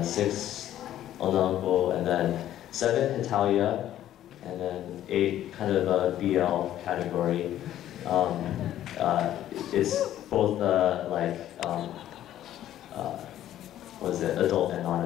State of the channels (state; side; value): quieter; right; 12.2 dB